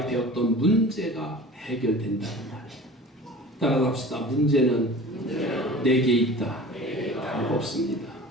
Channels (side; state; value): both; normal; correlation 0.40